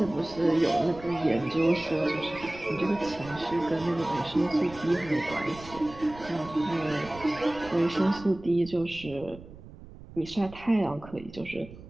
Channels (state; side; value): noise; right; rumble, 17 dB below the sound